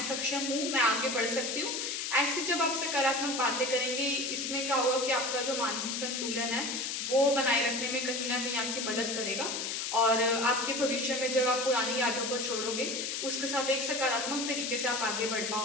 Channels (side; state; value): left; noise; hiss, 3 dB below the sound